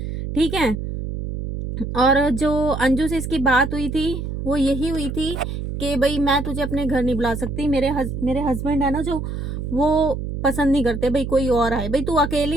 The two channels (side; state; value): right; noise; hum, 5 dB below the sound